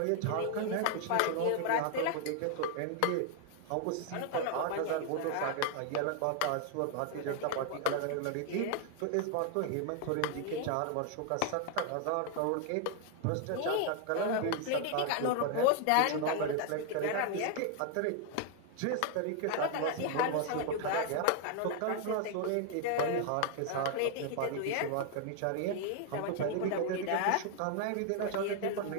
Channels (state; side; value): different; both; correlation 0.00